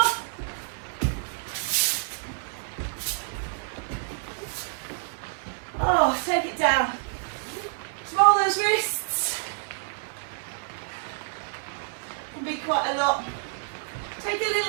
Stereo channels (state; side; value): silent; left; 59 dB below the other